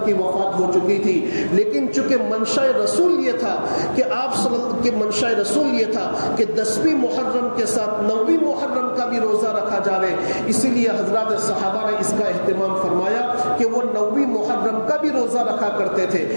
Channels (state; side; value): inverted; both; correlation -1.00